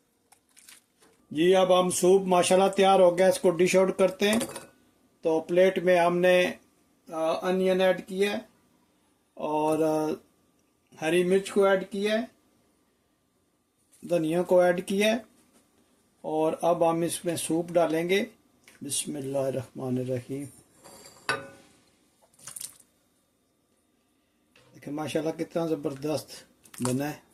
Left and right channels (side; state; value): both; identical; correlation 1.00